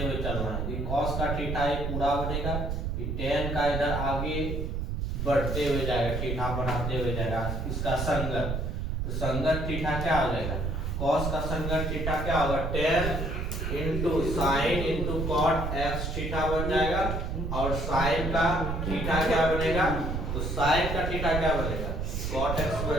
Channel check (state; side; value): noise; right; rumble, 2 dB below the sound